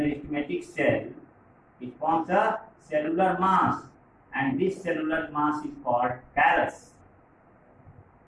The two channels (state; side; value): identical; both; correlation 1.00